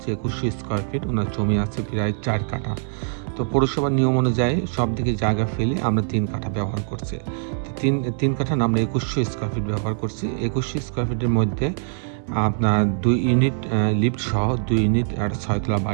2100 স্কোয়ার ফিট। ওনার জমি আছে প্রায় 4 কাঠা। তো পৌরসভার নিয়ম অনুযায়ী সব দিকে জায়গা ফেলে আমরা 3 কাঠা ব্যবহার করছি। তিন কাঠা না, আমরা 2100 স্কোয়ার ফিট ব্যবহার করছি। 2100 স্কোয়ার ফিটের মধ্যে আপনার 2 ইউনিট লিফট সহ 2 ইউনিট একটা 6 তলা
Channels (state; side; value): silent; left; 63 dB below the other